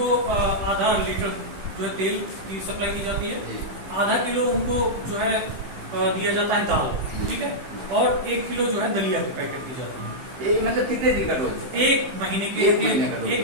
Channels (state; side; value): late; left; 15 ms